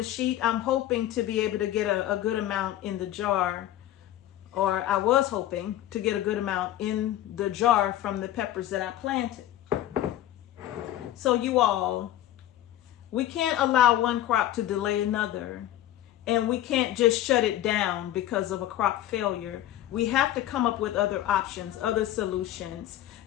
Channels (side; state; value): right; quieter; 13.2 dB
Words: sheet, I'm hoping to be able to get a good amount in the jar, or I was hoping to get a good amount in the jar from the peppers that I planted. So you all, we can't allow one crop to delay another, and we can't just shut it down because of a crop failure. We have to come up with other options, other solutions.